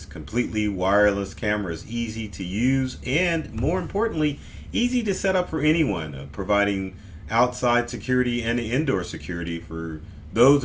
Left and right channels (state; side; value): identical; both; correlation 1.00